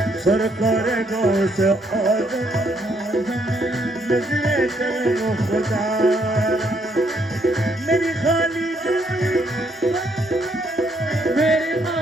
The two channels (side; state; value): both; normal; correlation 0.71